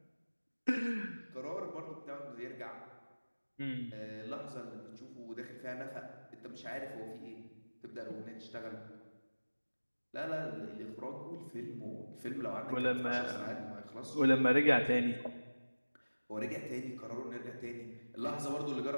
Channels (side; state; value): both; inverted; correlation -1.00